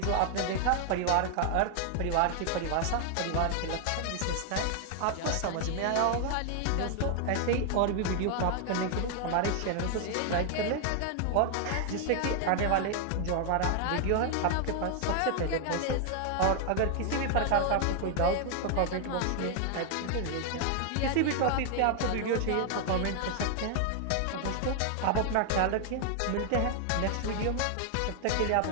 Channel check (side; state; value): both; different; correlation 0.00